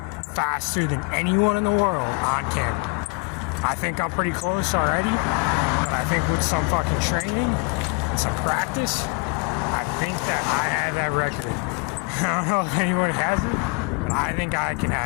faster than anyone in the world on camera. I think I'm pretty close already, but I think with some fucking training and some practice, I think that I have that record. I don't know if anyone has it, but I think I can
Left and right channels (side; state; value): right; quieter; 31.6 dB